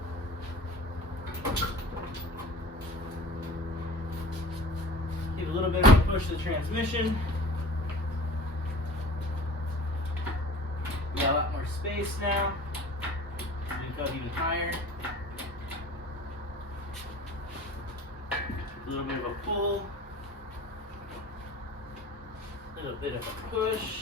Give a little bit of a push to the transmission. We got a lot more space now. We can go even higher. A little bit of a pull. A little bit of a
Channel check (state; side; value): normal; both; correlation 0.42